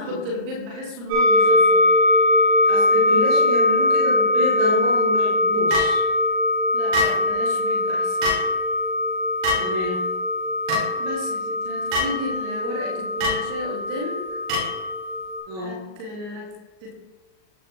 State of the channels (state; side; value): late; left; 38 ms